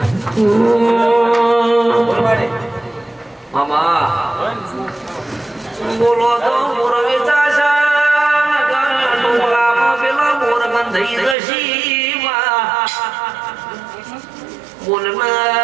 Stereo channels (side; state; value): left; drops out; at 11.4 s